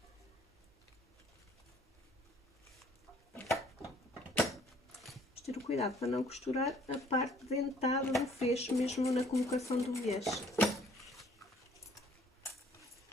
Vamos ter o cuidado para não costurar a parte dentada do fecho, mesmo na colocação do viés.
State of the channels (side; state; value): both; normal; correlation 0.59